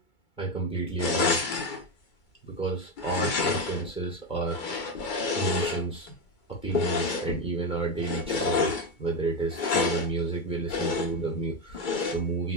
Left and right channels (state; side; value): late; right; 2.3 ms